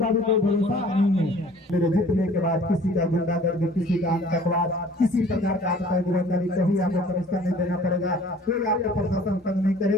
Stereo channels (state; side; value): normal; both; correlation 0.51